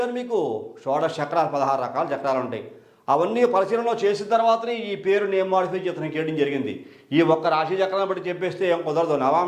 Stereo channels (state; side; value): identical; both; correlation 1.00